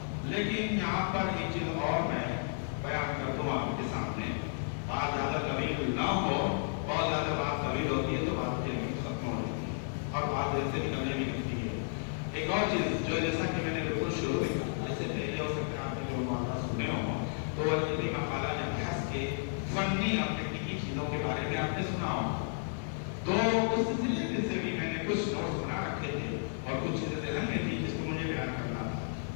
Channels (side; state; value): right; silent; digital silence